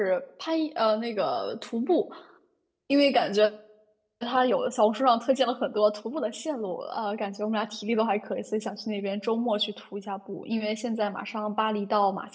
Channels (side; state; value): both; identical; correlation 1.00